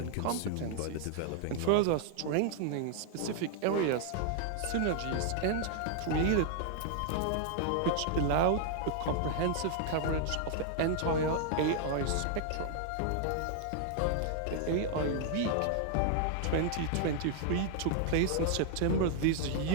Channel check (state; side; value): different; both; correlation 0.00